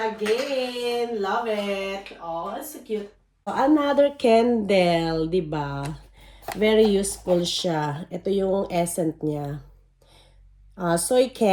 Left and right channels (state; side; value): identical; both; correlation 1.00